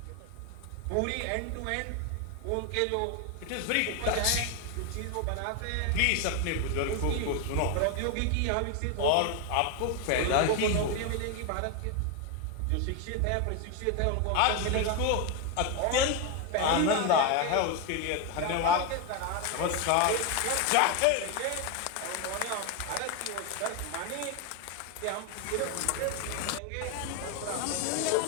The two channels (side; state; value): both; different; correlation 0.01